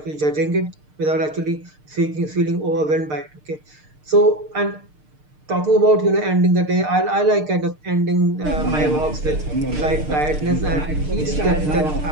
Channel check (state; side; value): late; left; 6.6 ms